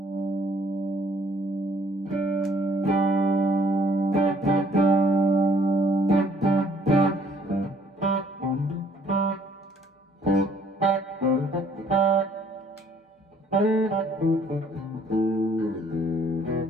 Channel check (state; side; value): normal; both; correlation 0.62